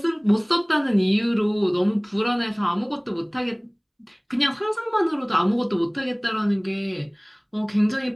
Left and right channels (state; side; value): identical; both; correlation 1.00